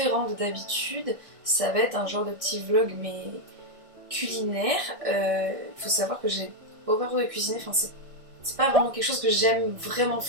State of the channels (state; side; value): late; left; 1.6 ms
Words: de d'habitude. Ça va être un genre de petit vlog mais culinaire. Il faut savoir que j'ai horreur de cuisiner, enfin c'est pas vraiment quelque chose que j'aime vraiment